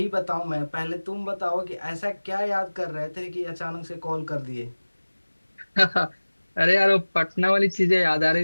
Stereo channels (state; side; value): inverted; both; correlation -1.00